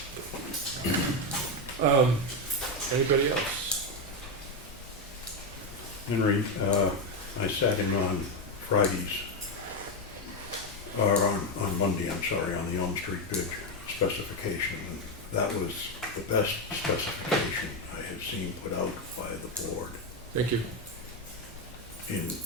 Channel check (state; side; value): normal; both; correlation 0.08